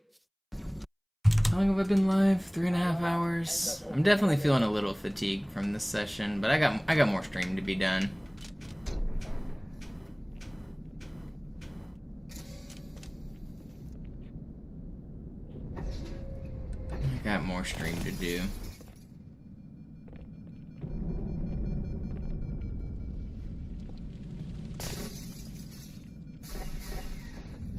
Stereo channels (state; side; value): identical; both; correlation 1.00